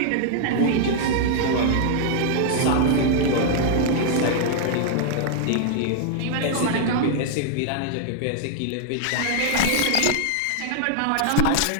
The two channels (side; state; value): both; different; correlation -0.01